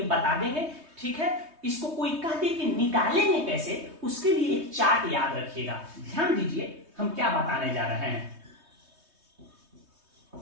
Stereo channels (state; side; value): late; left; 3.2 ms